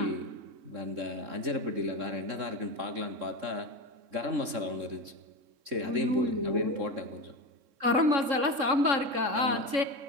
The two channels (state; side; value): late; left; 3.6 ms